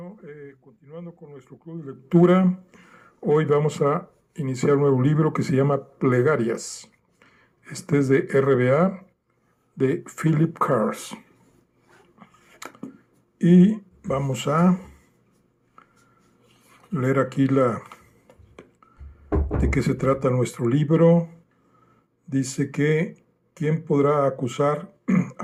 continuando con nuestro club de lectura, hoy vamos a iniciar un nuevo libro que se llama Plegarias. Este es de RBA, de Philip Cars. Y vamos a leer aquí de qué se trata nuestro libro. Dice que ¿quién podrá acusar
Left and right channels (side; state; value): both; identical; correlation 1.00